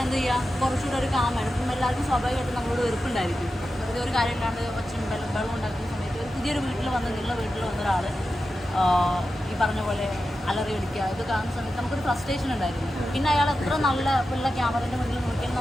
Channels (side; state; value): both; normal; correlation 0.91